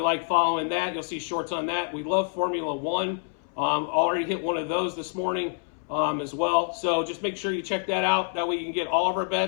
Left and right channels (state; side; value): silent; right; 60 dB below the other